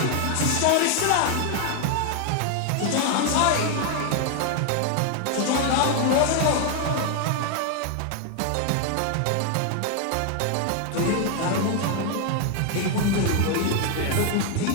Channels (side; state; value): both; different; correlation 0.01